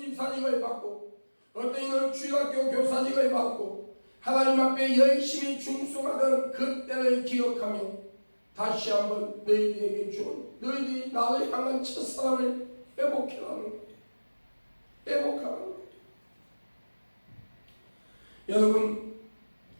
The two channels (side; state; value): both; inverted; correlation -1.00